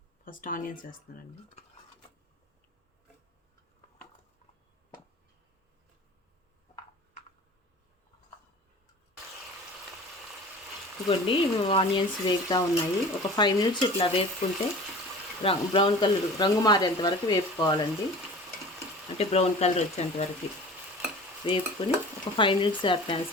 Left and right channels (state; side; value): normal; both; correlation 0.40